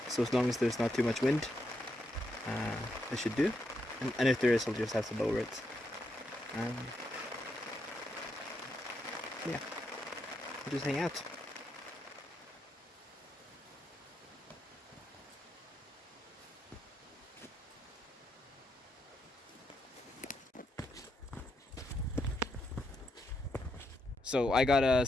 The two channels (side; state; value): both; normal; correlation 0.81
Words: so as long as there's not too much wind, I should do, and if there is, I'll just have to lower it. Yeah, I'll just hang out. So I got a